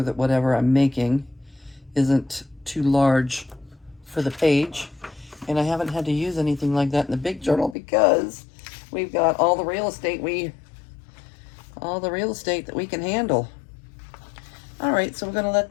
that whatever I'm making isn't too large for the page. And I haven't had to use anything like that in the big journal because we've got all the real estate that we can handle. All right, so we're gonna let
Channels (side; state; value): right; drops out; at 7.8 s